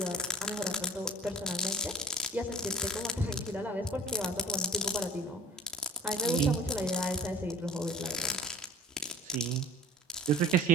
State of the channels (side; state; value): both; normal; correlation 0.43